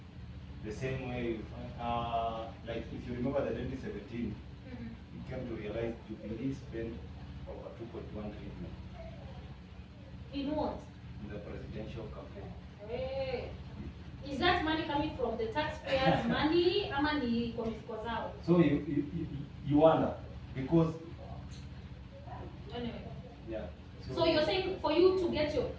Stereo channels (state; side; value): identical; both; correlation 1.00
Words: The same way, like if you remember the 2017, you came to realize Jubilee spent over 2.1 trillion. In what? In the presidential campaign. Hey. Is that money coming from the taxpayers' money or money from mifuko zao? So you wonder, because anyway. Yeah. So you're saying for you to get your,